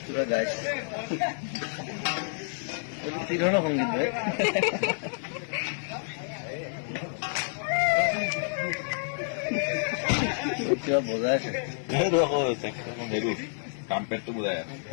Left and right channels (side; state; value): right; silent; 59 dB below the other